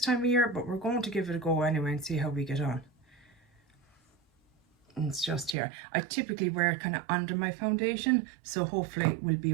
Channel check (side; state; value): left; drops out; at 5.6 s